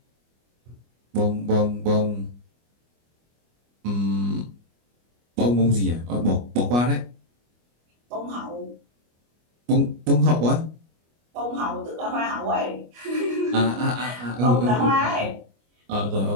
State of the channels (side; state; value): left; late; 25 ms